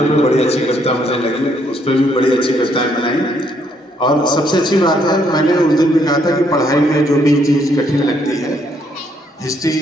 पे बड़ी अच्छी कविता मुझे लगी, उस पर भी बड़ी अच्छी कविताएं बनाई। और सबसे अच्छी बात है, मैंने उस दिन भी कहा था कि पढ़ाई में जो भी चीज़ कठिन लगती है,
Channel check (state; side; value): normal; both; correlation 0.71